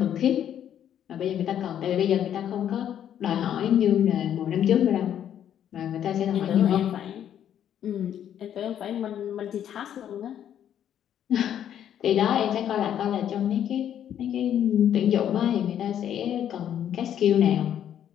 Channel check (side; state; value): right; quieter; 10.0 dB